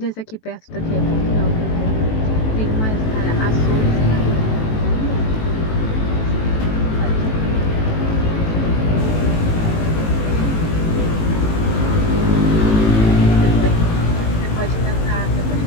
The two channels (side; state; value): right; late; 18 ms